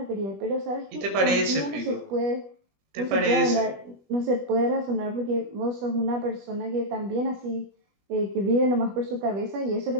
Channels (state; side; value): late; left; 20 ms